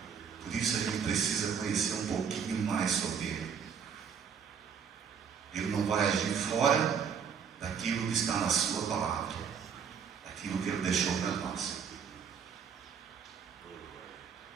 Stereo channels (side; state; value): left; quieter; 7.0 dB